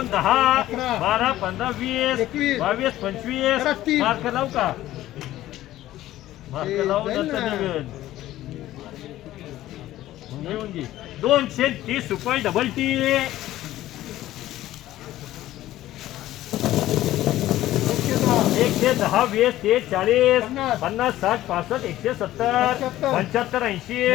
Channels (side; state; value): right; quieter; 14.6 dB